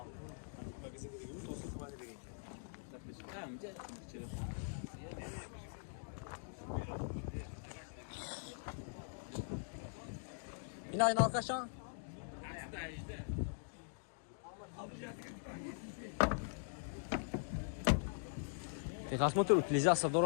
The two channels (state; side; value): silent; right; digital silence